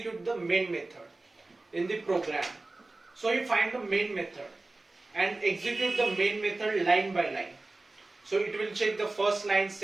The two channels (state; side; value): quieter; left; 3.1 dB